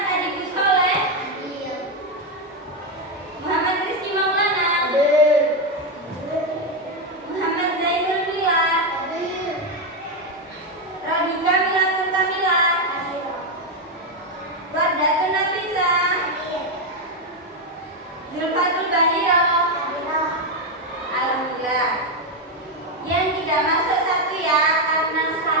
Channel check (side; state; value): both; normal; correlation 0.06